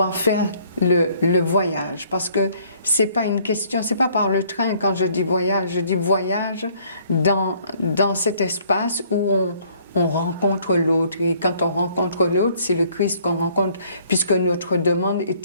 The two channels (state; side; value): inverted; both; correlation -0.61